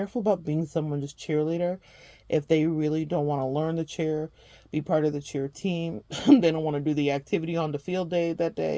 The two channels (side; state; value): both; identical; correlation 1.00